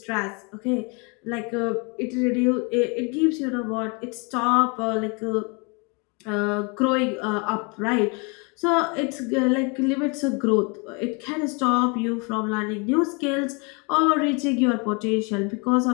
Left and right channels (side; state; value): right; quieter; 31.9 dB